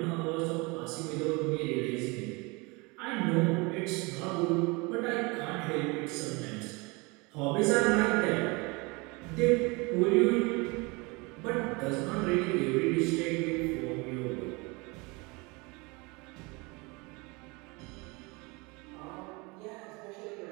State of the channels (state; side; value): quieter; left; 27.0 dB